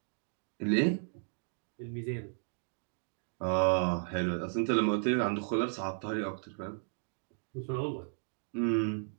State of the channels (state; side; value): silent; left; digital silence